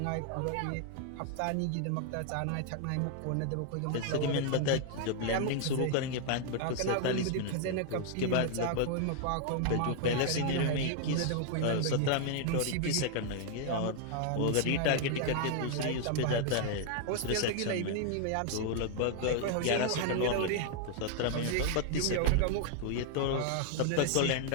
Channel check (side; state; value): both; different; correlation 0.00